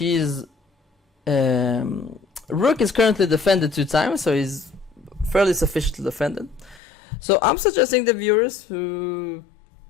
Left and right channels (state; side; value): drops out; right; at 6.8 s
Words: rook is currently defended 2 times, so he's fairly sufficiently defended. So I'm suggesting the viewers who